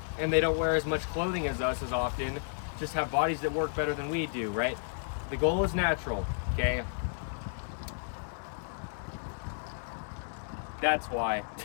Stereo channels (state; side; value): silent; right; digital silence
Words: and they don't wear as much clothing as us as often just have bodies that work better than we do, right? The goal is natural, okay? That's why.